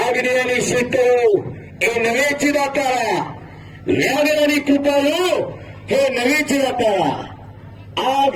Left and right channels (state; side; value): identical; both; correlation 1.00